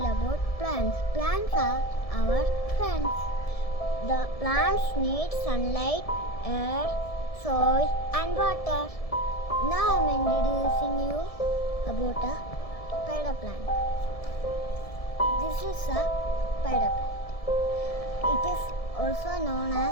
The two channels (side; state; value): right; late; 1.7 ms